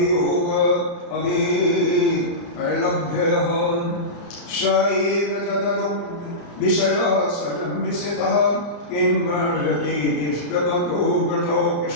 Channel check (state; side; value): late; right; 35 ms